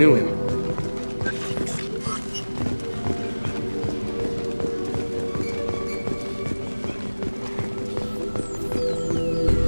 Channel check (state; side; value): inverted; both; correlation -1.00